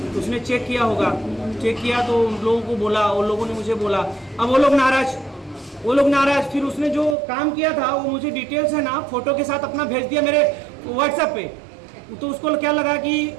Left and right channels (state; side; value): drops out; left; at 7.2 s